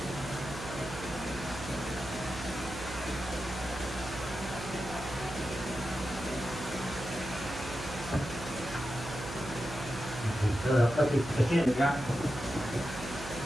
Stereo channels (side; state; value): right; noise; hum, 10 dB below the sound